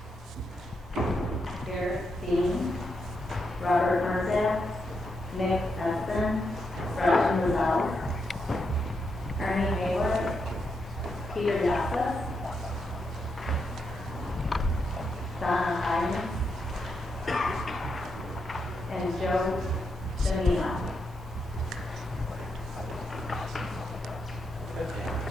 Garrett Dean, Robert Merzak, Nick Espen, Raj Mazal, Ernie Hayward, Peter Yassas, Donna Hines, and Joe Janino.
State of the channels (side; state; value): both; normal; correlation 0.82